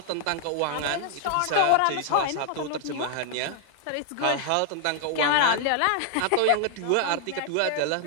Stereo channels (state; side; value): different; both; correlation 0.00